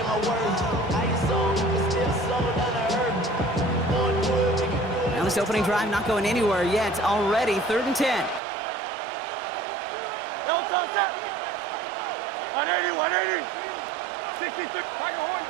Now this opening drive not going anywhere yet. Already 3rd and 10. No touch. 180. 63. Tiger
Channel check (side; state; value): left; drops out; at 8.4 s